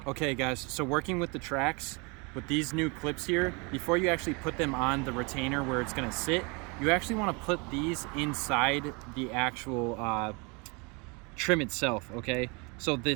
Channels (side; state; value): left; quieter; 30.4 dB